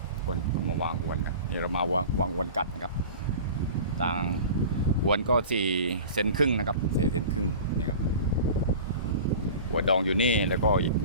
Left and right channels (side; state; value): both; inverted; correlation -0.37